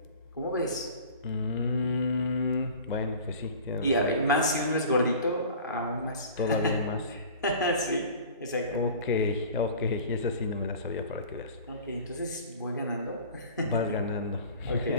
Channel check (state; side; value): inverted; both; correlation -0.42